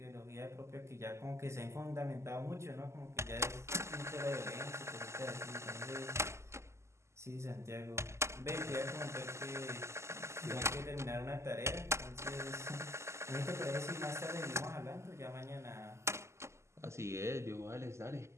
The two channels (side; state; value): left; late; 0.13 ms